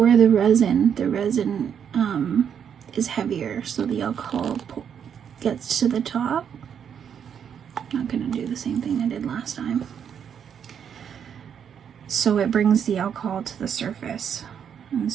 the resin is heavier, so the alcohol gets to the top. I'm not gonna do the same thing I did last time. So it brings the alcohol to the surface, and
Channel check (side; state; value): left; quieter; 8.1 dB